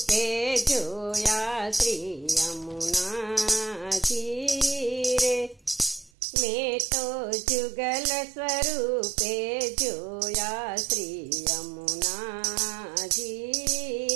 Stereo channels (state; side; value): drops out; left; at 6.1 s